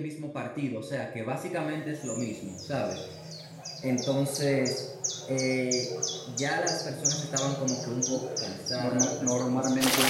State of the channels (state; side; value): identical; both; correlation 1.00